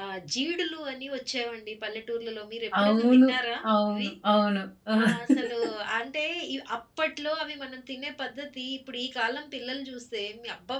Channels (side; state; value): both; identical; correlation 1.00